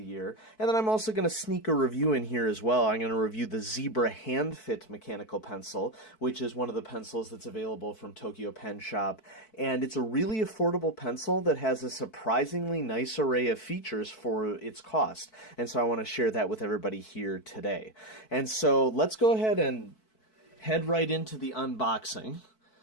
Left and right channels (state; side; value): late; right; 4.6 ms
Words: year. And then I'm also going to sneak a review in here as well. I'm going to review the Zebra Handfit mechanical pencil, which is one of the pencils that's available from Tokyo Pen Shop. And it's a really affordable pencil that has a surprisingly nice array of features for its cost. And so I want to share that with everybody here today. And so let's go ahead and head right into the unboxing.